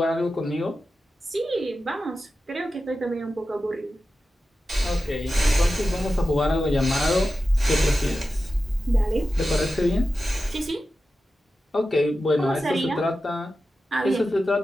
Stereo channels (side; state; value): both; normal; correlation 0.92